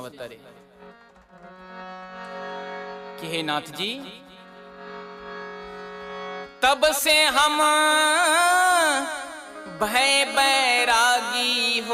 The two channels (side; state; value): both; identical; correlation 1.00